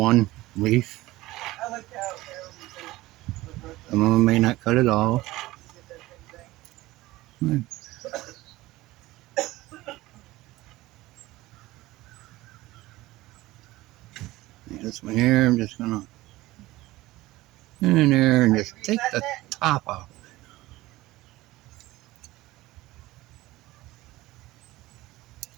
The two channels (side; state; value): left; quieter; 18.3 dB